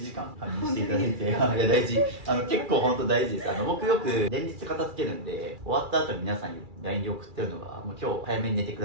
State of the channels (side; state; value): left; late; 2.4 ms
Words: 間仮眠していただいて、いや大事。結構本当大事です。僕よく連日片付けるんで、終わった後に皆さんに LINE で送ってるのが、もう今日早めに寝てく